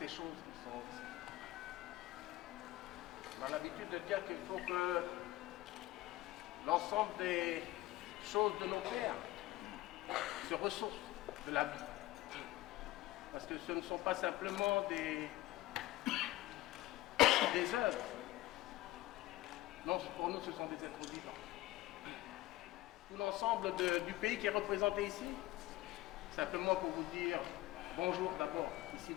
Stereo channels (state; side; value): quieter; right; 17.3 dB